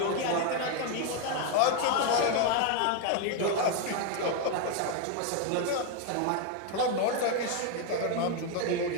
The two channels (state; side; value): different; both; correlation 0.01